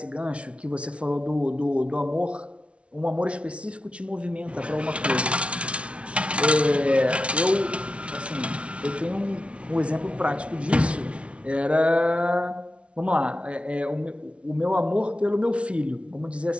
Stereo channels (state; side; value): late; left; 0.061 ms